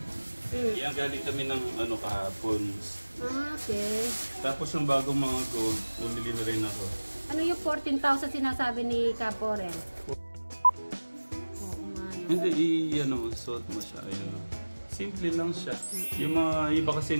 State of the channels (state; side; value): inverted; both; correlation -1.00